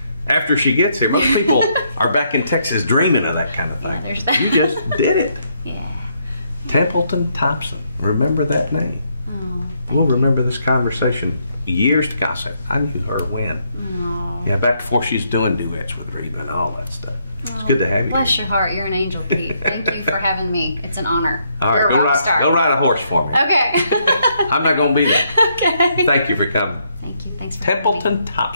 After she gets here, most people are back in Texas dreaming of that kind of thing. There's that. You just did it. Yeah. Templeton Thompson. Remember that name. Oh, we'll remember this conversation years to come. I knew her when. Oh. Yeah, back before she's doing duets with Reba and all that stuff. It's good to have you. Bless your heart. You're an angel, Pete. Thank you for having me. It's an honor. All right, go ride a horse for me. Okay. I'm not going to be there. Okay. Thank you for coming. Thank you. Thanks for Templeton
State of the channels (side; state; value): both; inverted; correlation -0.74